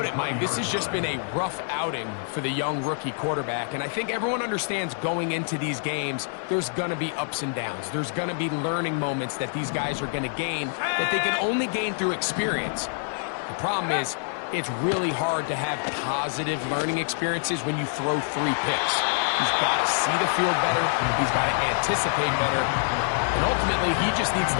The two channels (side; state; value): right; silent; 61 dB below the other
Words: it, Mike. This has just been a rough outing for the young rookie quarterback, and I think everyone understands going into these games, there's going to be ups and downs. There's going to be learning moments that these guys are going to gain that they can only gain through experience. The problem is, it's really hard to have positive learning experiences when you throw 3 picks. He's got to see the field better. He's got to anticipate better. And ultimately, he just needs